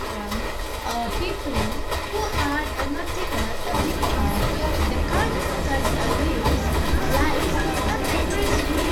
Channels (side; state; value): both; identical; correlation 1.00